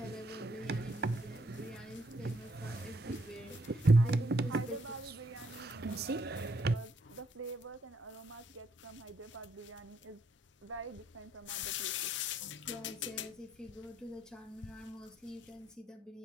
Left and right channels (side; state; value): both; normal; correlation 0.72